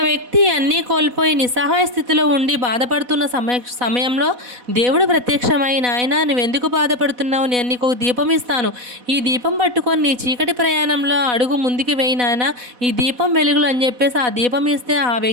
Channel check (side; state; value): left; late; 4.1 ms